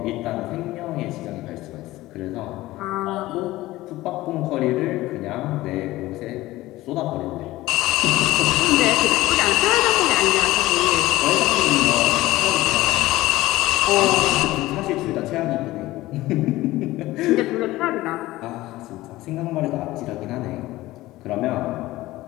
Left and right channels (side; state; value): right; quieter; 17.6 dB